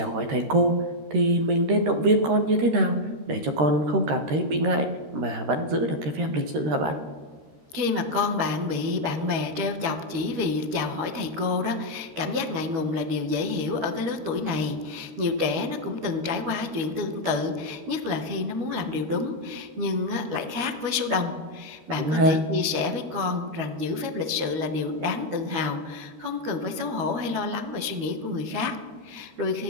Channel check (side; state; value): left; late; 12 ms